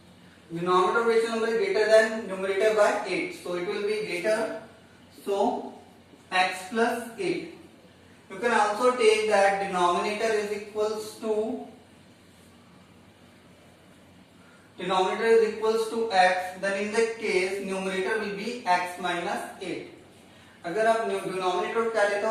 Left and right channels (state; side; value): identical; both; correlation 1.00